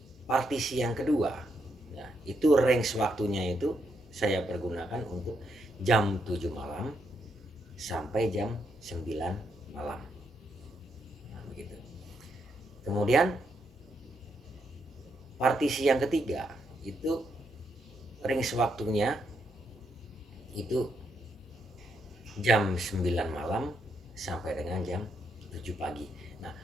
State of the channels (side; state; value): both; normal; correlation 0.79